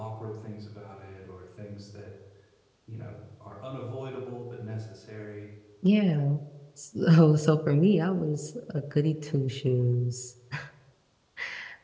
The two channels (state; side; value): identical; both; correlation 1.00